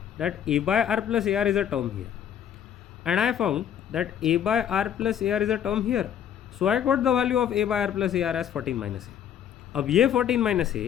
that A by R plus AR is a term here and I found that A by R plus AR is a term here. So I got the value of A by R plus AR as 14 minus A. अब ये 14 minus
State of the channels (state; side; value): quieter; right; 9.4 dB